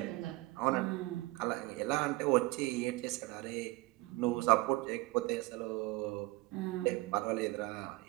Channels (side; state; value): left; quieter; 21.2 dB